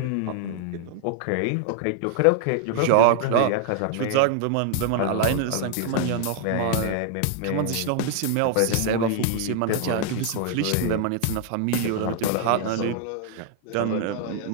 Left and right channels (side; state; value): both; different; correlation 0.00